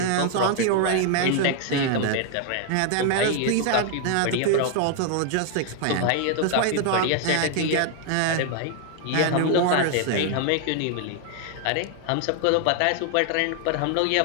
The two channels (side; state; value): both; different; correlation 0.00